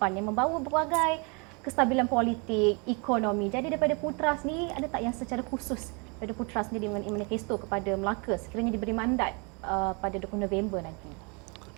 yang membawa berbagai kestabilan politik, ekonomi. Jadi daripada Putra sendiri, ada tak yang secara khusus daripada Putra sendiri mengenai manifesto kepada Melaka sekiranya diberi mandat pada 20 November nanti?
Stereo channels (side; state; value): left; quieter; 32.5 dB